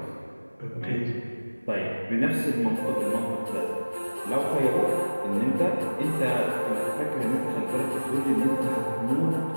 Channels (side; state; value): both; inverted; correlation -1.00